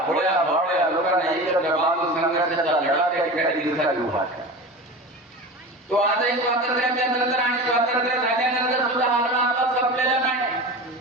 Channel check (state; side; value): normal; both; correlation 0.31